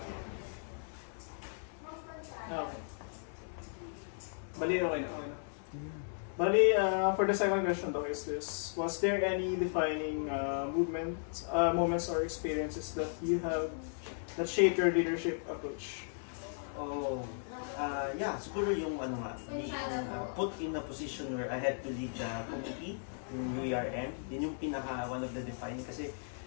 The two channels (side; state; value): right; silent; digital silence